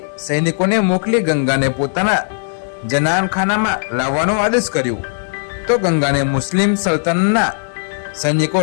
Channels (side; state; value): right; silent; digital silence